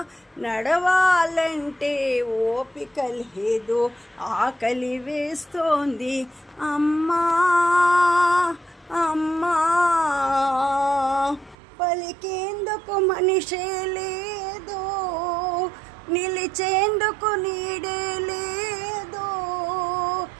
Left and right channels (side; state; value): left; drops out; at 11.6 s